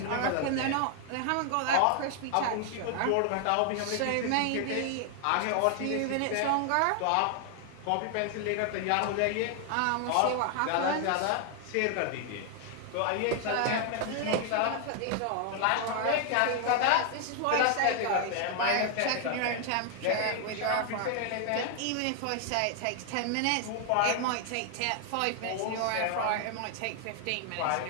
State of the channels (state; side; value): different; both; correlation 0.00